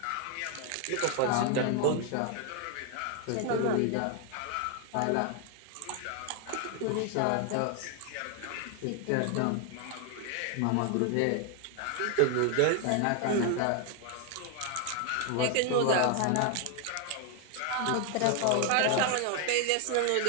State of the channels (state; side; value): different; both; correlation 0.00